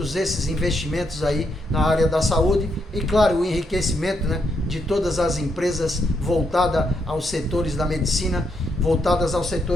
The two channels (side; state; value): both; normal; correlation 0.78